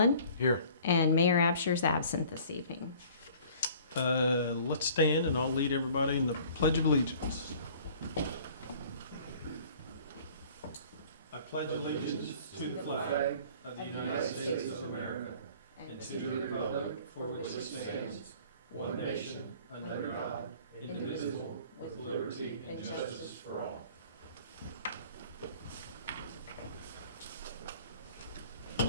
Here. And Mayor Absher's absent this evening. Let's stand and I'll lead everybody in the Pledge of Allegiance. I pledge allegiance to the flag of the United States of America and to the republic for which it stands, one nation, under God, indivisible, with liberty and justice for all.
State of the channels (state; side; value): inverted; both; correlation -0.50